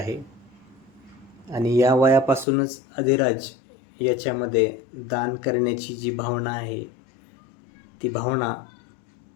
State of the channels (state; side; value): drops out; right; at 2.5 s